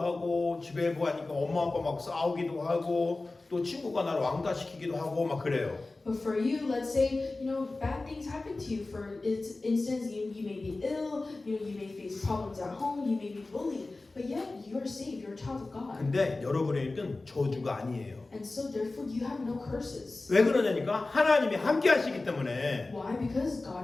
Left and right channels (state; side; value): quieter; right; 3.2 dB